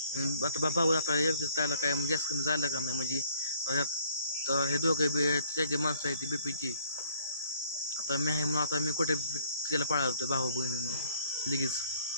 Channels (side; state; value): both; inverted; correlation -0.63